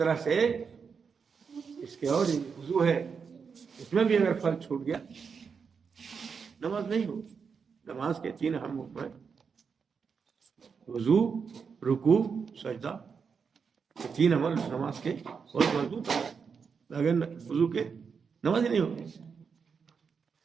سے اس کے اور وضو ہے، اس میں بھی اگر فرض چھوٹ گیا نماز نہیں ہوگی. نماز کے 3 اہم حکم ہیں: وضو، رکوع، سجدہ. یہ 3 عمل نماز کے بہت مضبوط ہیں. اگر وضو کے نماز ہی نہیں ہوگی.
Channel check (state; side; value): quieter; left; 5.9 dB